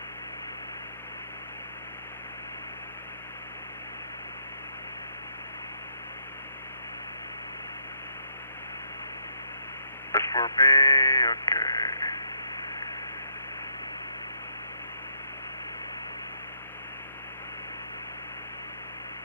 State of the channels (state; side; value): inverted; both; correlation -0.74